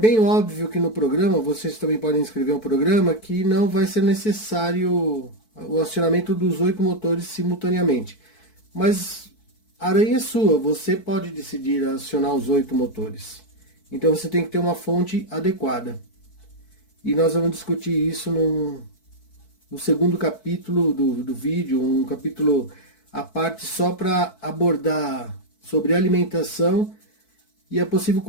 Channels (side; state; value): right; late; 4.6 ms